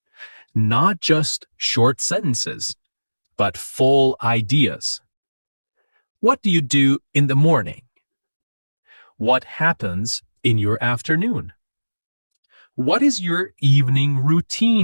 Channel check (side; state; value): both; inverted; correlation -1.00